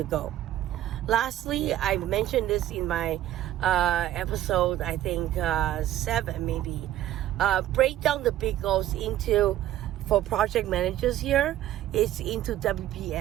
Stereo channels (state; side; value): quieter; left; 13.1 dB